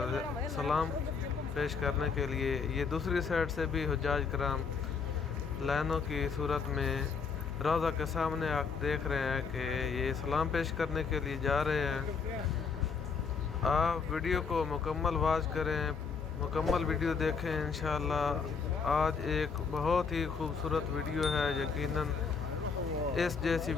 سلام پیش کرنے کے لیے یہ دوسری سائیڈ سے بھی حجاج کرام لائنوں کی صورت میں روضہ کے سامنے آپ دیکھ رہے ہیں کہ یہ سلام پیش کرنے کے لیے جا رہے ہیں۔ آپ ویڈیو کو مکمل واچ کریں، مکمل ویڈیو دیکھیں انشاءاللہ۔ آج ایک بہت ہی خوبصورت ویڈیو ہے، یقیناً اس جیسی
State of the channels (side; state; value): right; quieter; 5.5 dB